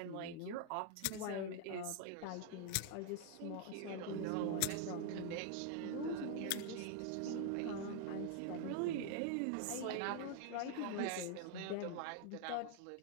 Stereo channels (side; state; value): both; different; correlation 0.00